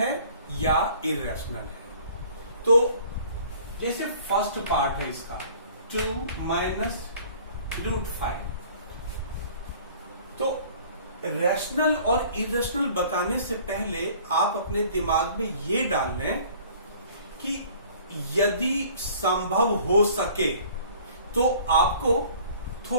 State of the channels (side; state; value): both; inverted; correlation -0.51